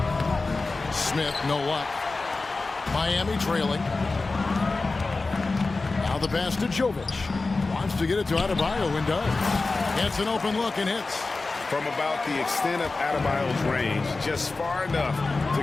Smith, no luck. Miami trailing. Now the pass to Jovic. Wants to get it to Adebayo and does. Gets an open look and hits. From about the extent of Adebayo's range, just far enough to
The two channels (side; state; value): right; quieter; 3.6 dB